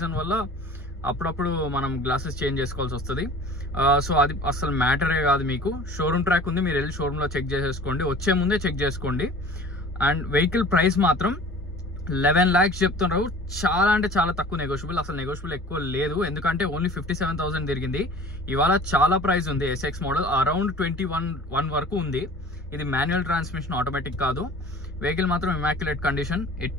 వల్ల అప్పుడప్పుడు మనం గ్లాసెస్ చేంజ్ చేసుకోవాల్సి వస్తుంది. సో అది అసలు మ్యాటరే కాదు. మీకు షోరూమ్ ట్రాక్ ఉంది, మీరు వెళ్ళి షోరూంలో చెక్ చేసేసుకోండి, వచ్చే ముందే చెక్ చేసుకోండి. అండ్ వెహికల్ ప్రైస్ మాత్రం 11 lakhs చెప్తున్నారు. చాలా అంటే చాలా తక్కువ నెగోషియబుల్, అసలు నెగోషియబుల్ ఎక్కువ లేదు. ఎందుకంటే ఓన్లీ 57,000 తిరిగింది. ఇవాళ చాలా ప్రైస్ ఉంది. SX మోడల్ అరౌండ్ 21 వరకు ఉంది. ఇది మాన్యువల్ ట్రాన్స్మిషన్, ఆటోమేటిక్ కాదు. వెహికల్ మాత్రం ఇమాక్యులేట్ కండిషన్,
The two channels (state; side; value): normal; both; correlation 0.44